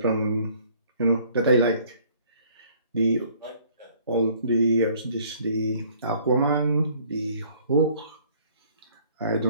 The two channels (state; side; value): inverted; both; correlation -0.58